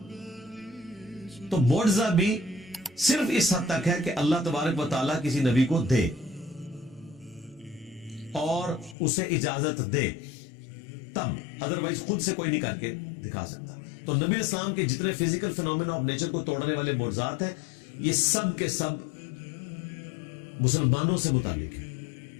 تو معجزہ بھی صرف اس حد تک ہے کہ اللہ تبارک و تعالیٰ کسی نبی کو دے اور اسے اجازت دے تب، ادروائز خود سے کوئی نہیں کر کے دکھا سکتا. تو نبی اسلام کے جتنے فزیکل فینومینا آف نیچر کو توڑنے والے معجزات ہیں یہ سب کے سب مسلمانوں سے متعلق ہے.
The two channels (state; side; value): drops out; right; at 9.0 s